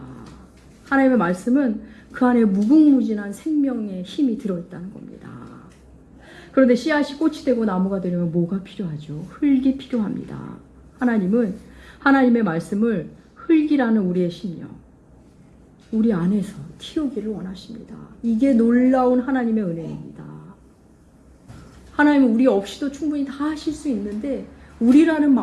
하나님의 말씀은 그 안에 무궁무진한 생명의 힘이 들어있다는 겁니다. 그런데 씨앗이 꽃이 되고 나무가 되려면 뭐가 필요하죠? 흙이 필요합니다. 하나님은 하나님의 말씀을 흙이라는 우리의 심령, 우리 안에서 틔우기를 원하십니다. 이게 놀라운 하나님의 은혜입니다. 하나님은 우리 없이도 충분히 다 하실 수 있는데 우리라는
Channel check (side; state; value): both; identical; correlation 1.00